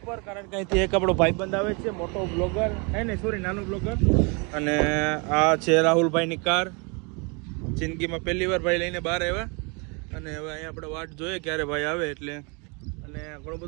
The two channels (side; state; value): left; quieter; 31.9 dB